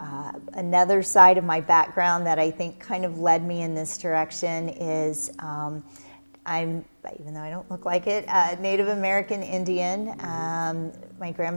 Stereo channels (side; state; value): both; inverted; correlation -1.00